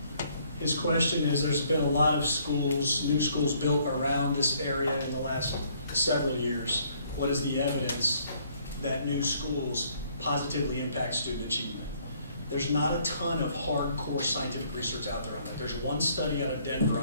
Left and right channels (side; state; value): both; inverted; correlation -0.64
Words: His question is, there's been a lot of schools, new schools built around this area in the last several years. What is the evidence that new schools positively impact student achievement? There's not a ton of hardcore scientific research out there on that. There's one study out of Denver